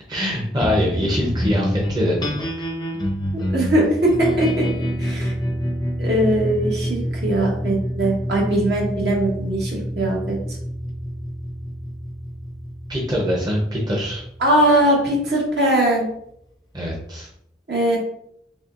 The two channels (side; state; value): both; normal; correlation 0.55